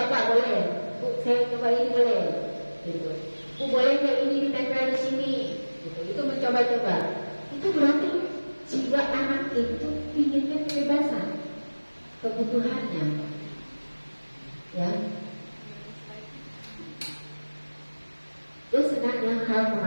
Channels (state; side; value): inverted; both; correlation -1.00